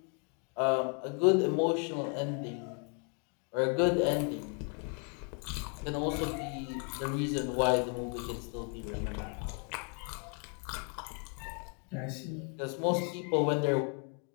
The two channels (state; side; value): quieter; right; 39.1 dB